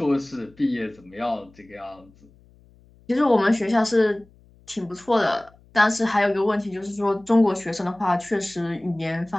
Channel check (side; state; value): left; noise; hum, 28 dB below the sound